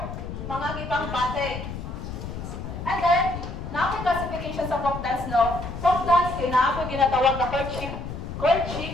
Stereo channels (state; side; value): noise; left; rumble, 8 dB below the sound